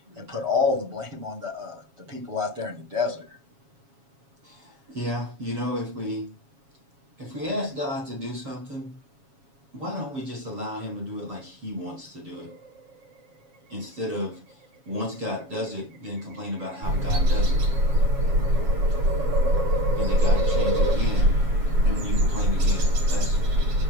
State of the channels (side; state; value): left; late; 7.3 ms